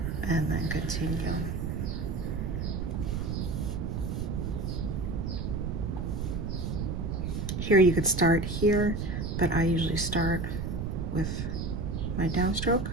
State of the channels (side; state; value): right; noise; rumble, 2 dB below the sound